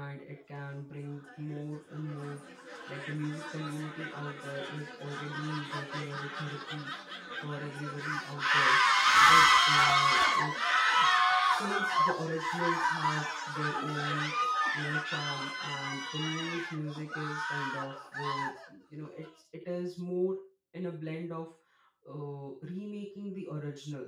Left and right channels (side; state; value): both; identical; correlation 1.00